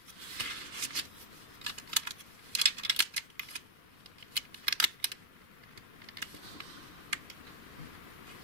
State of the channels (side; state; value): left; late; 2.4 ms